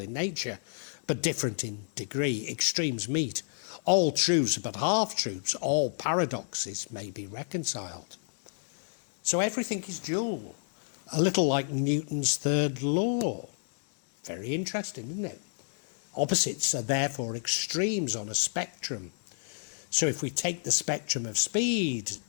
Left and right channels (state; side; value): silent; right; digital silence